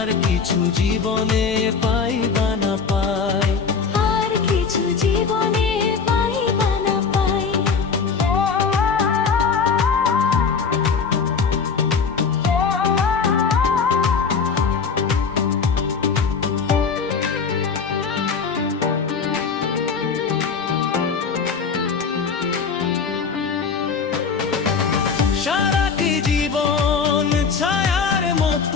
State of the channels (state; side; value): quieter; right; 5.6 dB